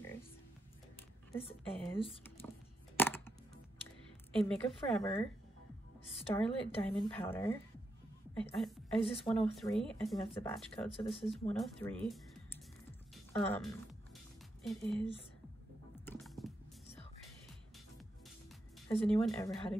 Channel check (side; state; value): both; normal; correlation 0.83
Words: This is a Makeup Forever Starlit Diamond Powder. Is this 103? I think that's the batch code, so this is 103. It is so pretty. Has anyone ever had a